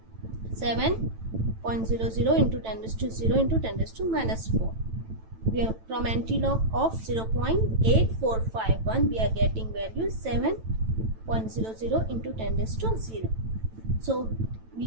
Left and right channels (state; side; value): late; left; 9.0 ms